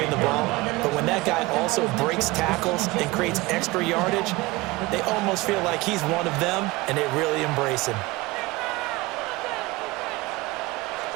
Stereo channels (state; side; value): quieter; left; 21.6 dB